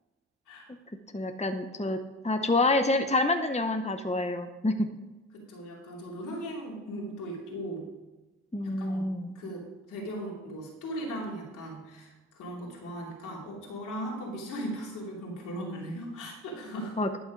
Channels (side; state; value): both; normal; correlation 0.34